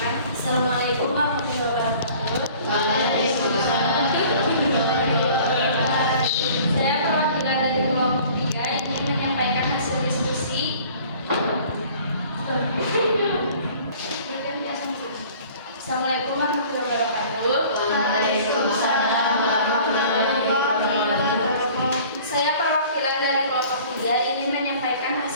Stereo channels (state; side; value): inverted; both; correlation -0.49